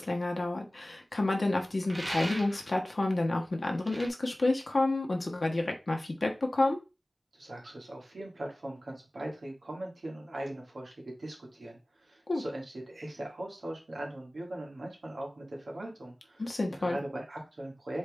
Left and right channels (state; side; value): normal; both; correlation 0.98